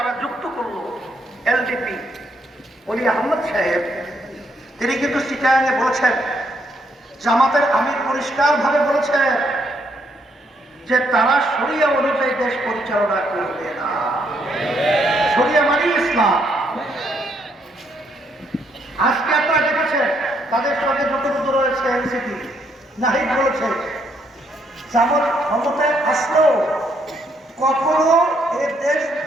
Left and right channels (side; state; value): both; normal; correlation 0.73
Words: যুক্ত করলো এলডিপি, ওলি আহমদ সাহেব, তিনি কিন্তু চিটাগাঙে বলেছেন, জামাতের আমির পরিষ্কার ভাবে বলেছেন যে তারা শরিয়া অনুযায়ী দেশ পরিচালনা করবে না। শরিয়া মানে ইসলাম। আজকে আপনারা দেখেছেন তাদের সঙ্গে যতটুকু রয়েছে এনসিপি, নাহিদ বলেছে জামাত ক্ষমতায় আসলেও কখনো এই দেশ